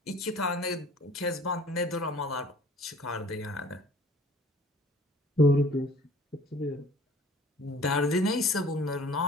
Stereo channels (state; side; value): normal; both; correlation 0.51